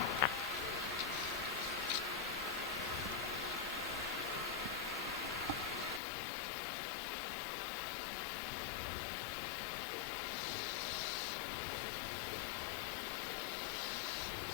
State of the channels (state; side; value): drops out; right; at 6.0 s